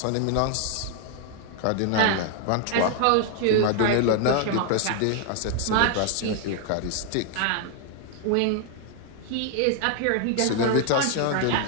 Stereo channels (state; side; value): different; both; correlation 0.00